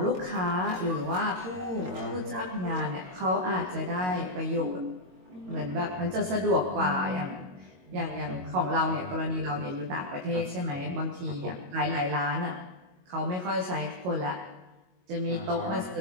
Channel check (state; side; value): late; left; 22 ms